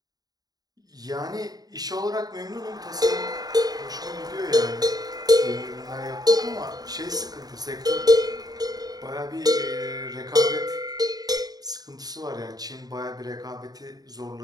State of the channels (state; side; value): late; left; 0.19 ms